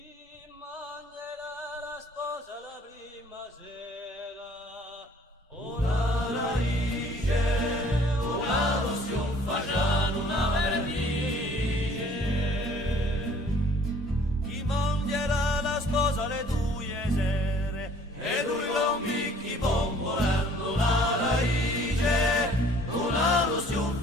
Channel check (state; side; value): normal; both; correlation 0.55